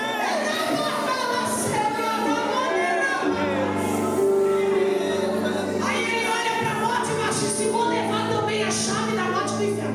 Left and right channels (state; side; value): identical; both; correlation 1.00